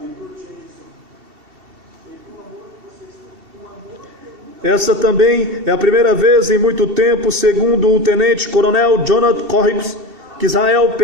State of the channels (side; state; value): left; late; 2.7 ms